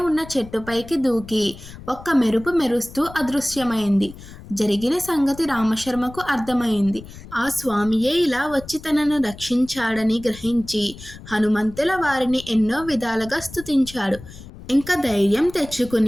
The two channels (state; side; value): noise; left; rumble, 16 dB below the sound